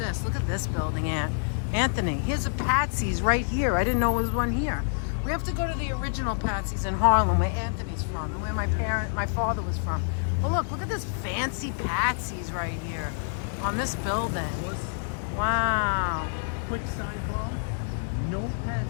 Look at this building, Aunt. Anthony, here's a Patsy's right here. I didn't know there was one here. We have to go to the original Patsy's in Harlem, where Anthony's from, and where my father was from. Well, look at this fancy Patsy's right here on this building. Wow. Quick sidebar. No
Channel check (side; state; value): right; silent; digital silence